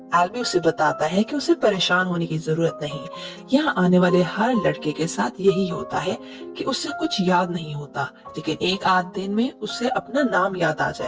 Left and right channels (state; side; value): identical; both; correlation 1.00